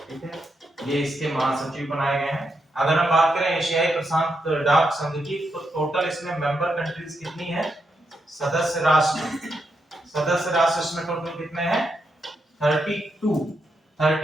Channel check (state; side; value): normal; both; correlation 0.82